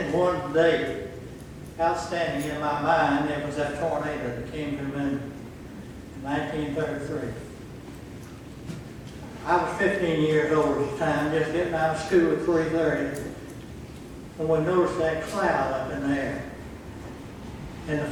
one day. Outstanding in my mind, it was that tornado that came to Minden in 1933. I was 15 years old at the time, just getting out of school at 3:30, and we noticed that cloud up in the air. And the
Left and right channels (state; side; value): identical; both; correlation 1.00